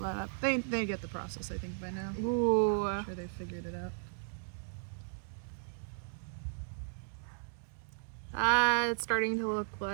that up. They get the process, I think, by now. Ooh. I'm sure they figured it out. It's starting to look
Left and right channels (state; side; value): silent; left; digital silence